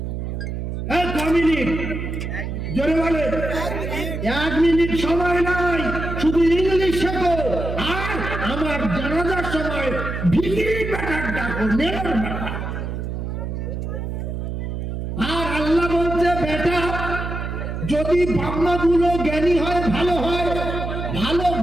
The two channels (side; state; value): right; noise; hum, 4 dB below the sound